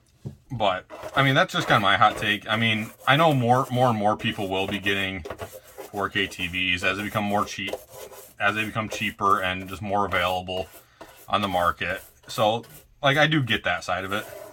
But I mean, that's just kind of my hot take. I mean, I know more and more people will be getting 4K TVs as they become cheaper and just more available on the market. So, like, I do get that side of it.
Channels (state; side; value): identical; both; correlation 1.00